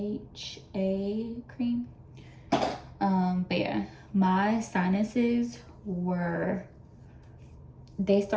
cream. But yeah, my sinuses were, it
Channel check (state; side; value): identical; both; correlation 1.00